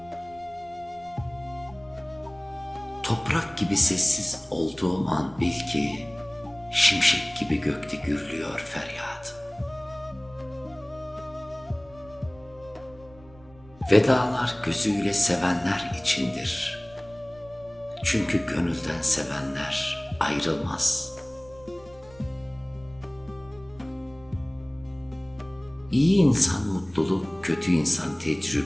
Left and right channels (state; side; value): noise; right; rumble, 24 dB below the sound